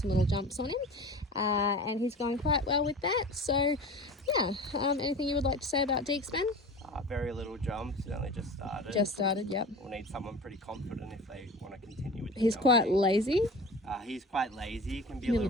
little jumps on him, and he's going quite well with that. So, yeah. Anything you would like to say about Deeks, Ben? Very little jumps. He only just started. Just started, yep. We'll need someone pretty confident if they want to continue with the He's jumping. quite lazy. He's quite lazy. He can be a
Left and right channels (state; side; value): normal; both; correlation 0.36